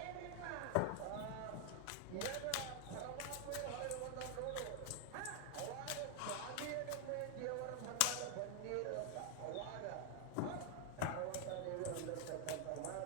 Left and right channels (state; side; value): different; both; correlation 0.00